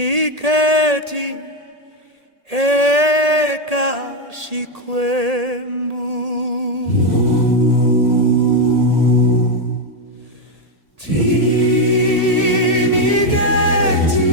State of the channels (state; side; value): late; left; 1.8 ms